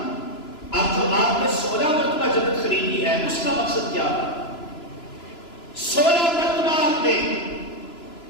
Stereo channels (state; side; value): late; right; 2.9 ms